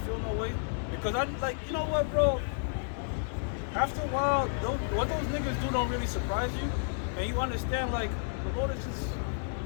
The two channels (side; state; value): right; silent; digital silence